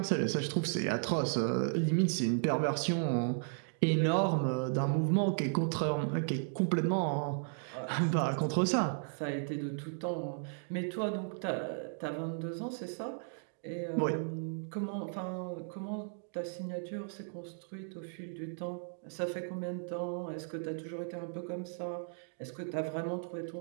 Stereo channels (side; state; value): left; silent; digital silence